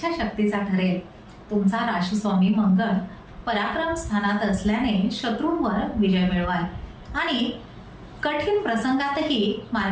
ठरेल. तुमचा राशीस्वामी मंगळ पराक्रम स्थानात असल्याने शत्रूंवर विजय मिळवाल आणि कठीण प्रसंगातही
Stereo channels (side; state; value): both; identical; correlation 1.00